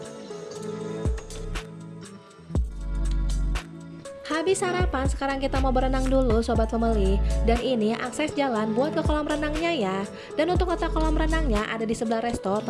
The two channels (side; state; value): both; identical; correlation 1.00